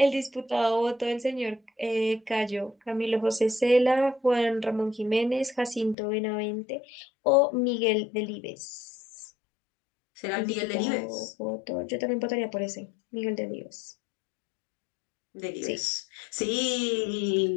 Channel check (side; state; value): right; drops out; at 6.0 s